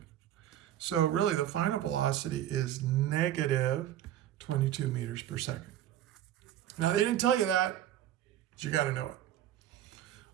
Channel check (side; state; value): left; quieter; 11.8 dB